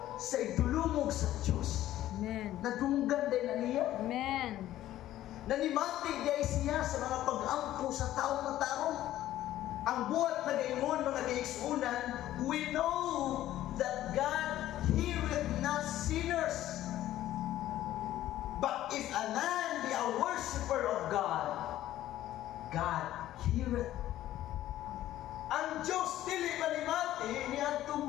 sa idulumog sa Diyos, Amen. nadunggan din na niya. Amen. Nanimati day siya sa mga pag-ampo sa taong na tarong. Ang buhat na gayon mga kaigsunan, we know that God heareth not sinners. But if a man be a worshipper of God, God heareth. Ang Diyos dili manimati niya itong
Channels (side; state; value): right; quieter; 13.7 dB